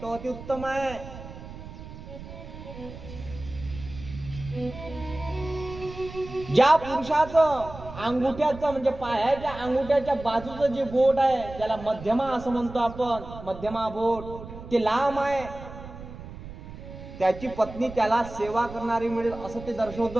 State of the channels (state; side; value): noise; right; rumble, 13 dB below the sound